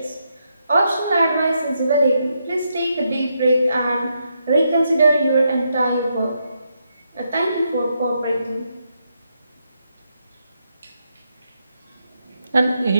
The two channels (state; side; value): inverted; both; correlation -0.81